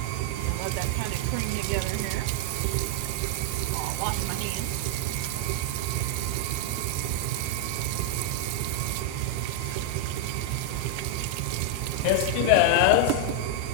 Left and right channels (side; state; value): both; different; correlation 0.00